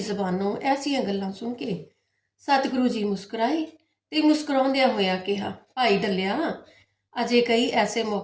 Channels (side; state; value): both; identical; correlation 1.00